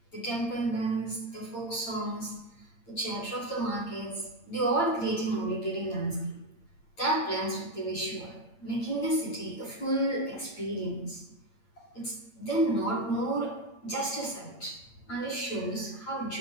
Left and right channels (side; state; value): right; late; 8.8 ms